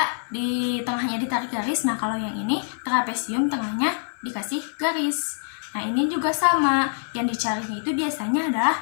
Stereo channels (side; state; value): right; silent; digital silence